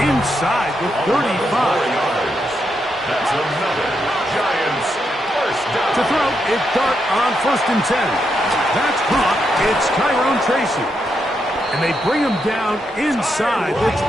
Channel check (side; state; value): both; normal; correlation 0.82